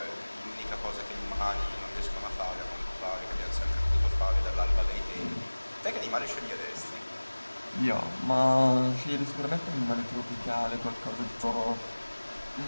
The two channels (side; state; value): both; inverted; correlation -1.00